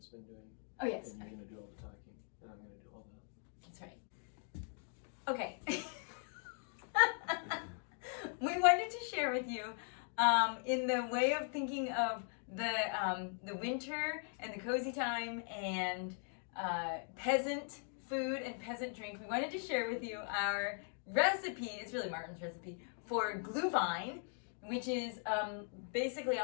been doing. Oh, yes. And you're going to do all the talking, and I'm going to do all the... That's right. Okay. We wanted to share with you, in the way of thinking of the winter and the cozy time and peasant food and peasant drink, we wanted to share with you our recipe. It's really Martin's recipe for Glühwein, which is basically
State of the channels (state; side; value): silent; right; 51 dB below the other